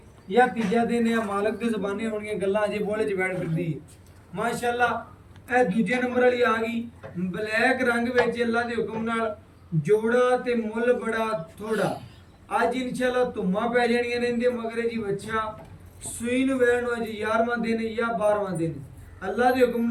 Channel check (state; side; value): identical; both; correlation 1.00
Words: ਜਾਂ ਤੀਜਾ ਦਿਨ ਹੈ। ਮਾਲਕ ਦੀ ਜ਼ਬਾਨੀ ਹੋਣੀਆਂ ਗੱਲਾਂ ਅਜੇ ਬੋਲੇ ਚ ਬੈਠ ਫਿਰਦੀ ਹੈ ਮਾਸ਼ਾਅੱਲਾ। ਇਹ ਦੂਜੇ ਨੰਬਰ ਵਾਲੀ ਆ ਗਈ ਬਲੈਕ ਰੰਗ ਵਿੱਚ। ਅੱਲਾ ਦੇ ਹੁਕਮ ਨਾਲ ਜੋੜਾ ਤੇ ਮੁੱਲ ਬੜਾ ਥੋੜਾ। ਅੱਜ ਇਨਸ਼ਾਅੱਲਾ ਧੁੰਮਾਂ ਪੈ ਜਾਣੀਆਂ ਨੇ ਇਹਦੇ ਮਗਰੇ ਜੀ ਬੱਚਾ। ਸੂਈ ਨੂੰ ਵੈਣ ਨੂੰ ਅੱਜ 11ਵਾਂ ਦਿਨ ਜਾਂ 12ਵਾਂ ਦਿਨ। ਅੱਲਾ ਦੇ ਹੁਕਮ